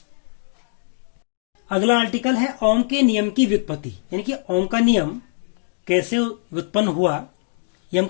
अगला आर्टिकल है ओम के नियम की व्युत्पत्ति, यानी कि ओम का नियम कैसे उत्पन्न हुआ ये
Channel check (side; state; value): right; silent; digital silence